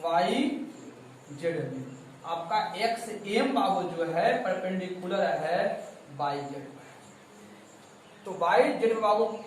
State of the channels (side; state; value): both; identical; correlation 1.00